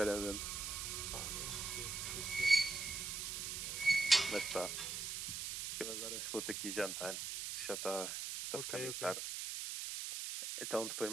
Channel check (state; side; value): noise; right; hiss, 3 dB below the sound